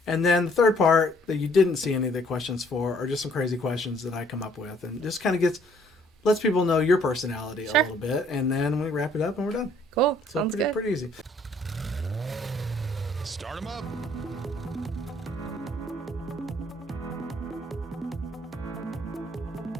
And then the third part that you didn't see any of the questions for are just some crazy questions that I come up with, and just kind of lets people know your personality a little bit, and then we wrap it up and we're done. Cool. So Sounds good. Pretty easy. Start them up.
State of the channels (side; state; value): both; normal; correlation 0.62